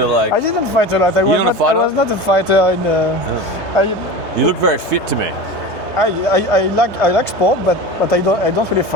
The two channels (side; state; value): left; late; 3.2 ms